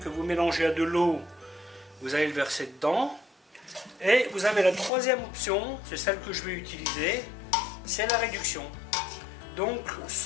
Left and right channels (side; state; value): right; drops out; at 4.9 s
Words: vous mélangez à de l'eau, vous allez le verser dedans. Et vous avez la troisième option, c'est celle que je vais utiliser, c'est la réduction. Donc